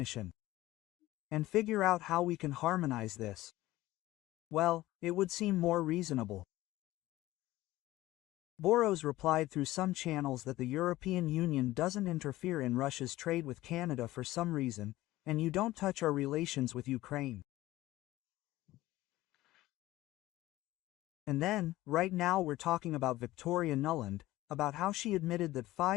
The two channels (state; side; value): quieter; right; 16.9 dB